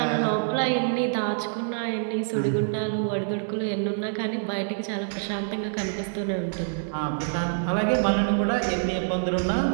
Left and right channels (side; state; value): left; silent; digital silence